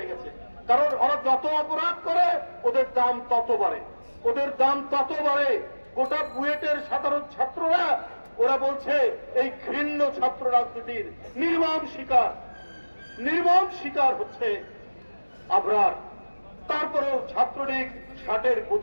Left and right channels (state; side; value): inverted; both; correlation -1.00